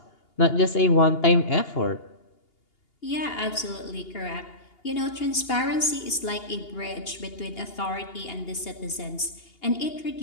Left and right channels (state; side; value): late; right; 2.8 ms